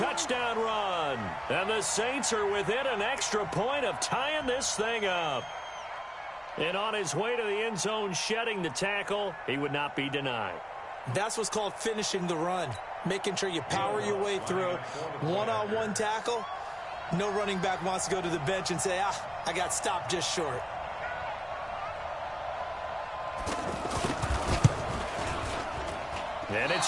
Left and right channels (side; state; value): both; identical; correlation 1.00